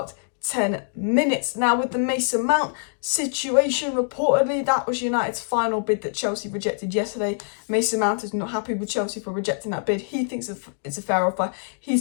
10 minutes. Now, with the Mason Mount situation, reportedly that was United's final bid that Chelsea rejected yesterday. Mason Mount is not happy with Chelsea for rejecting that bid. He thinks it's a fair offer.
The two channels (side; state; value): right; silent; digital silence